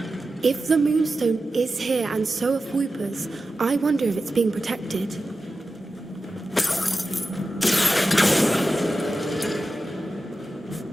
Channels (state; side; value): normal; both; correlation 0.92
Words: If the moonstone is here and so are Fwooper's, I wonder if it's being protected.